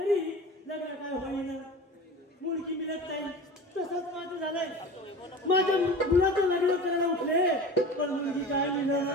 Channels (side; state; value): both; normal; correlation 0.35